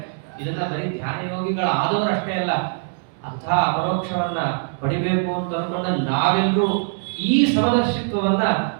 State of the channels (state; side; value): silent; left; digital silence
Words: ಇದನ್ನ ಬರೀ ಧ್ಯಾನ ಯೋಗಿಗಳು ಆದವರು ಅಷ್ಟೇ ಅಲ್ಲ, ಅಂತಹ ಅಪರೋಕ್ಷವನ್ನ ಪಡಿಬೇಕು ಅಂತ ಅನ್ಕೊಂಡ ನಾವೆಲ್ಲರೂ ಈ ಸಮದರ್ಶಿತ್ವವನ್ನ